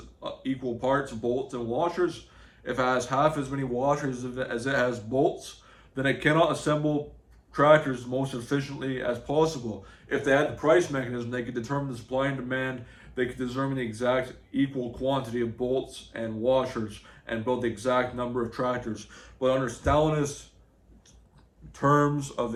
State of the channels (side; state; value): both; identical; correlation 1.00